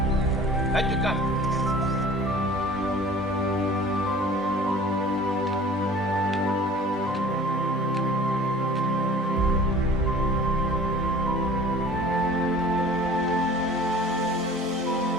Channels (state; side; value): normal; both; correlation 0.45